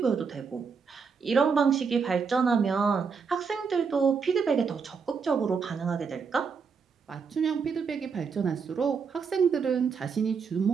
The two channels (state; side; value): quieter; left; 5.6 dB